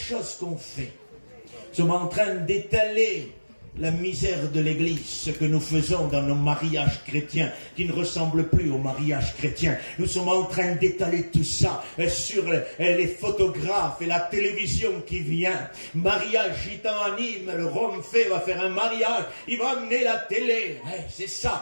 qu'on fait. Nous sommes en train d'étaler la misère de l'Église, ce que nous faisons dans nos mariages chrétiens, qui ne ressemblent plus aux mariages chrétiens. Nous sommes en train d'étaler tout ça sur les photographes et la télévision qui vient. Mariage gitan à Nîmes, le Rome fait va faire un mariage, il va amener la télé. C'est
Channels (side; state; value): both; inverted; correlation -1.00